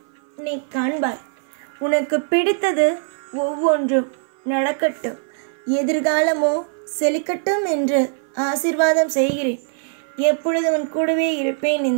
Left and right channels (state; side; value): silent; left; 58 dB below the other